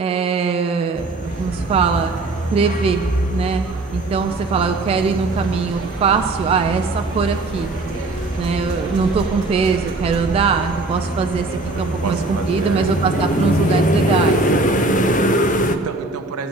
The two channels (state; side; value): quieter; left; 3.1 dB